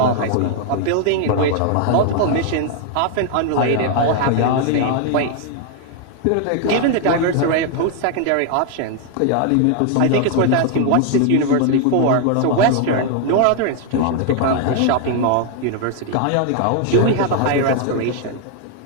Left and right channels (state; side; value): different; both; correlation 0.00